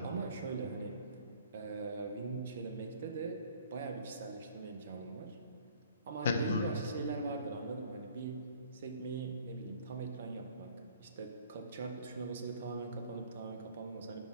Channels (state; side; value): inverted; both; correlation -0.54